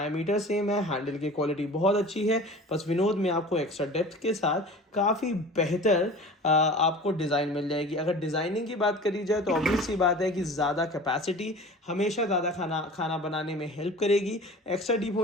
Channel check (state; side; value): normal; both; correlation 0.39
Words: सेम है, हैंडल की क्वालिटी बहुत अच्छी है। बस विनोद में आपको एक्स्ट्रा डेप्थ के साथ काफ़ी बेहतर आपको डिज़ाइन मिल जाएगी। अगर डिज़ाइनिंग की बात करी जाए तो ऑब्वियस सी बात है कि ज़्यादा कैपेसिटी हमेशा ज़्यादा खाना बनाने में हेल्प करेगी। एक्स्ट्रा डीप